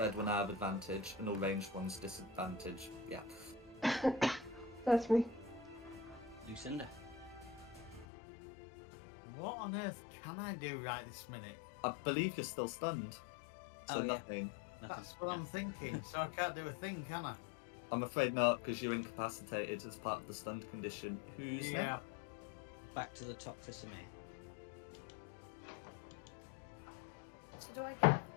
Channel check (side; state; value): right; drops out; at 8.1 s